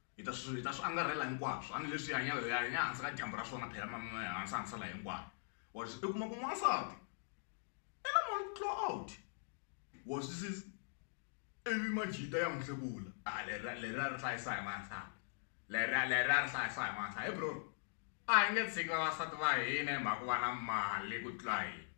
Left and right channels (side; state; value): right; silent; digital silence